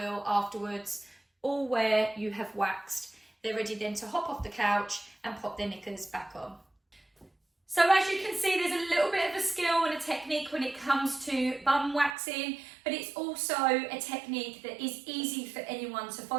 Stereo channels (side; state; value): left; drops out; at 12.2 s